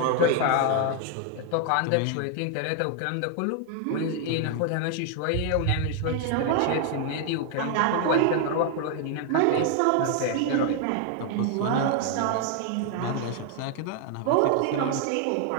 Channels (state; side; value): different; both; correlation 0.00